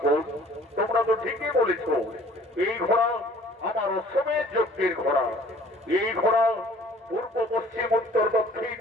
তোমরা তো ঠিকই বলেছ। এই ঘোড়া আমার অশ্বমের যজ্ঞের ঘোড়া। এই ঘোড়া পূর্ব পশ্চিম উত্তর দক্ষিণ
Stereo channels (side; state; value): both; normal; correlation 0.53